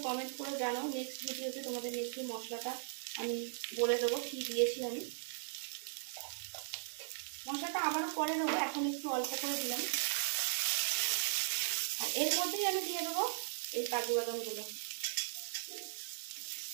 কমেন্ট করে জানাও। নেক্সট ভিডিওতে তোমাদের নেক্সট মশলাটা আমি বলে দেবো কি দিয়েছি আমি। মশলাটা আবারও পরে দেবো, এখন একটু অল্প করে দিলাম। আর এর মধ্যেই আমি দিয়ে দেবো এই কাজু বাদামগুলো।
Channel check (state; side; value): silent; left; 52 dB below the other